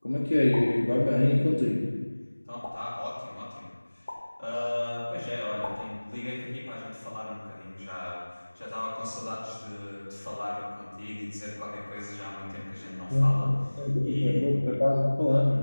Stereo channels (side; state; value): both; inverted; correlation -1.00